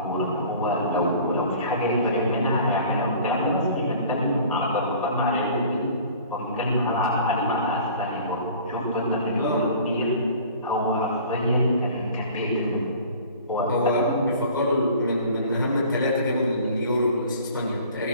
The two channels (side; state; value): both; inverted; correlation -0.47